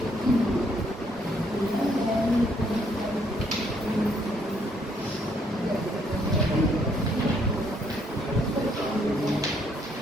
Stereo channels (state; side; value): normal; both; correlation 0.69